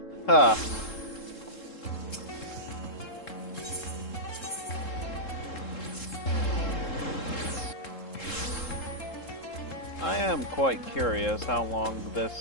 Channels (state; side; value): late; right; 3.7 ms